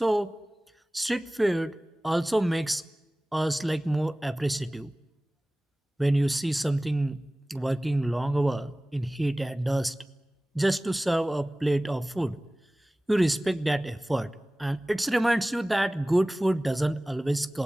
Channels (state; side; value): normal; both; correlation 0.98